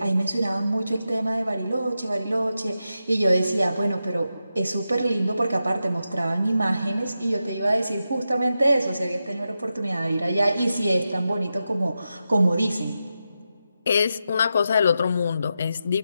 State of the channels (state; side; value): inverted; both; correlation -0.89